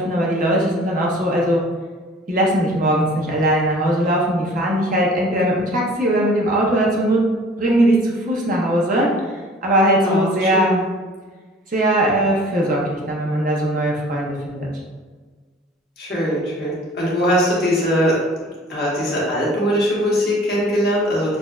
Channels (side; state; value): both; normal; correlation 0.48